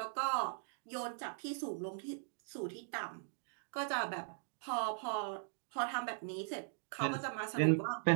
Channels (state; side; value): silent; left; digital silence